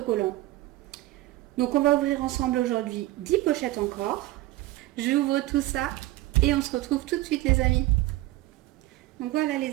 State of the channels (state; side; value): quieter; left; 17.2 dB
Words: Donc on va ouvrir ensemble aujourd'hui 10 pochettes encore. J'ouvre tout ça et on se retrouve tout de suite les amis. Donc voilà